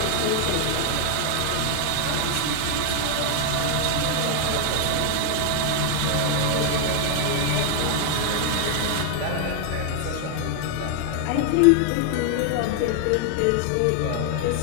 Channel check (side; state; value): both; different; correlation 0.00